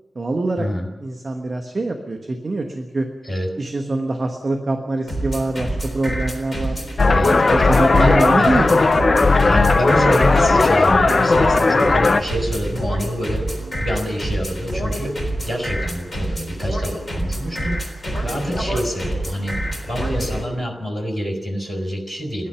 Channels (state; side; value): normal; both; correlation 0.93